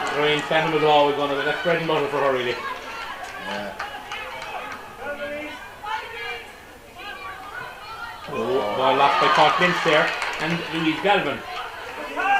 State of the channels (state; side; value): identical; both; correlation 1.00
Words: Lorraine Stanton was always going to be. That's bread and butter for her, really. Yeah. Ball lost by Paul Lynch there, and Louise Galvin